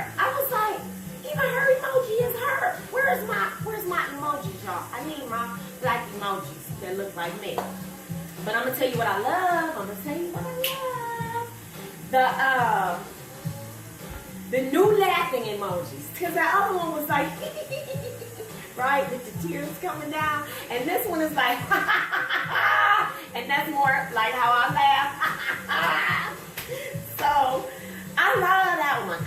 I was like, even her emoji is her. Where's my emojis, y'all? I need my black emojis that look like me. But I'm gonna tell you what I love. The new laughing emojis. Because the other one was like, right, with the tears coming down. And this one is like, and that's more like how I laugh. So, I love that one.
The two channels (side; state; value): both; identical; correlation 1.00